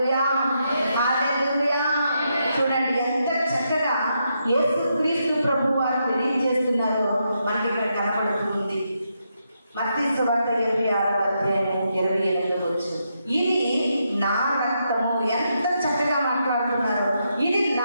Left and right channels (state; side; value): inverted; both; correlation -0.82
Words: హల్లెలూయా. చూడండి ఎంత చక్కగా యేసుక్రీస్తు ప్రభు వారు తెలియజేస్తున్నారో మనకి ఇక్కడ కనబడుతుంది. మత్తయి సువార్త 26వ అధ్యాయం 28వ వచనం. ఇది నా రక్తము. ఎంత చక్కగా మాట్లాడుతున్నారు. ఇది